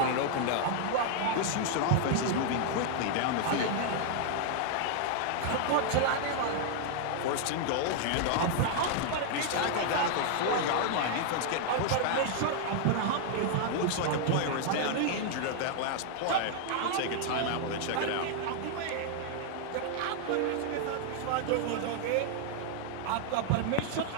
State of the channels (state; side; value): different; both; correlation 0.00